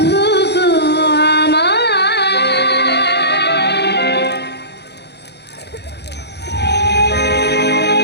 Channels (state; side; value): late; right; 0.49 ms